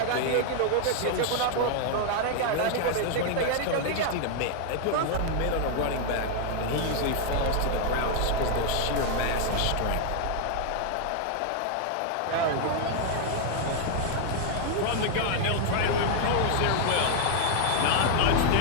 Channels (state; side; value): different; both; correlation 0.00